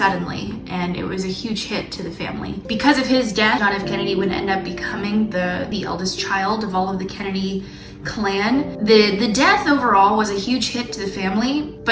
and it was a huge hit to the family. Because of his death, John F. Kennedy would end up becoming the eldest child of all of the Kennedy clan. The death overall was a huge hit to the family,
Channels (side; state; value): both; identical; correlation 1.00